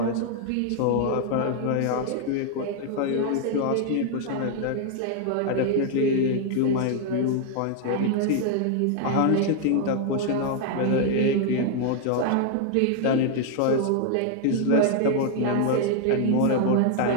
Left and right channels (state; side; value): different; both; correlation 0.00